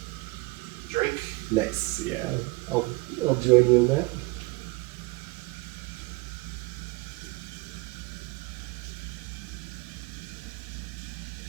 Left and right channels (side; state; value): left; quieter; 24.7 dB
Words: Drink. Nice. Yeah. I'll join you in that.